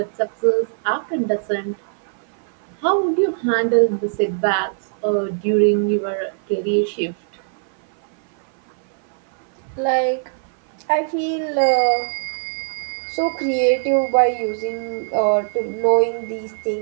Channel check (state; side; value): silent; left; 56 dB below the other